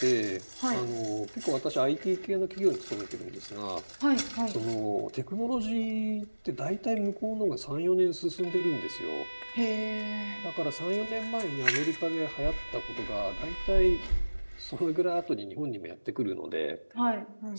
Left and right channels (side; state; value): both; inverted; correlation -1.00